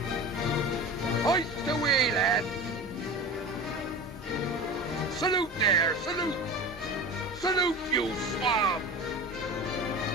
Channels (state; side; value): normal; both; correlation 0.32